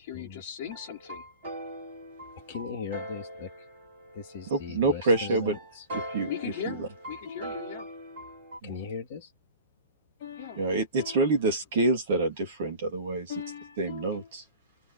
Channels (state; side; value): inverted; both; correlation -0.38